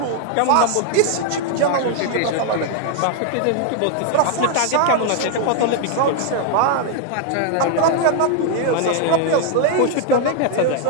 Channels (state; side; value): different; both; correlation 0.00